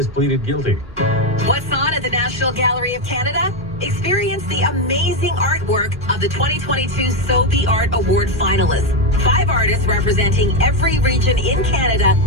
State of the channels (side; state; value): both; normal; correlation 0.07